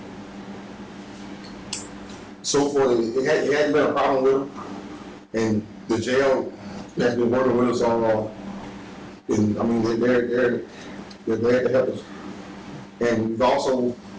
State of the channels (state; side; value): identical; both; correlation 1.00